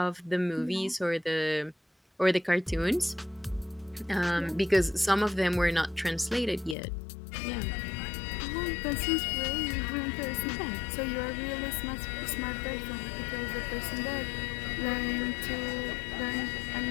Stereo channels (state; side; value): drops out; right; at 6.8 s